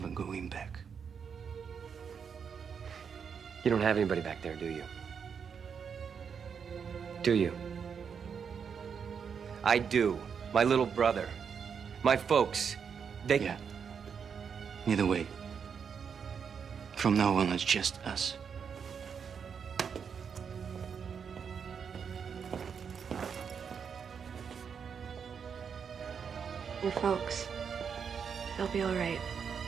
going back. You don't have anybody back there, do you? Do you? I do. My little brother. My folks. They... Yeah. Either way. From now on, it's just us. Your folks, they'll be all right.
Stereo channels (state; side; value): quieter; left; 6.7 dB